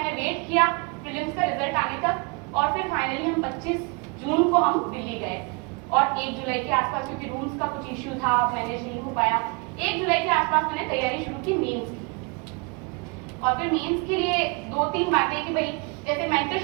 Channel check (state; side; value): quieter; left; 30.9 dB